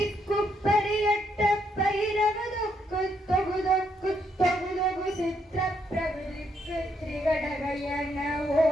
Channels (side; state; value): both; normal; correlation 0.75